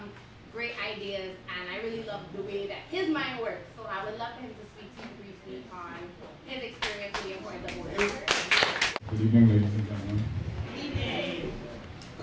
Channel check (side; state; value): both; identical; correlation 1.00